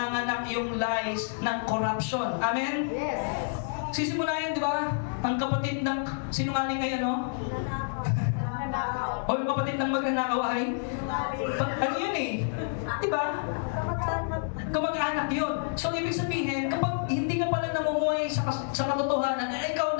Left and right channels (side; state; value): right; silent; digital silence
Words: yung lies ng corruption. Amen? Yes. Sisimulahin, di ba? Ang kapatid ng sinungaling ay ano? O yung kapatid ng magnanakaw ay? Ano yun eh? Di ba? Kamag-anak yun. So, ibig sabihin, kapag hindi ka pala namumuhay sa katotohanan, ikaw